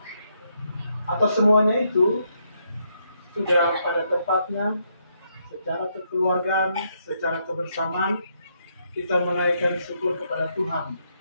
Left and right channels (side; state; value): both; inverted; correlation -0.76